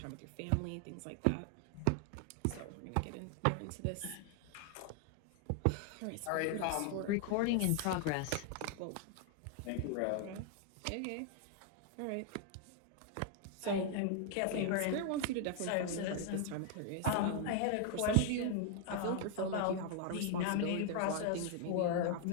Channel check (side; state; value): both; different; correlation 0.00